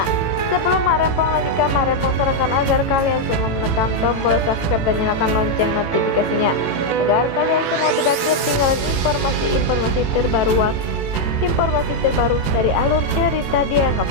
sebelum Mak Rempong lanjutkan, Mak Rempong sarankan agar kalian semua menekan tombol subscribe dan nyalakan lonceng notifikasinya agar kalian semua tidak ketinggalan informasi terbaru dari alur cerita Dia Yang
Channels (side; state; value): right; late; 18 ms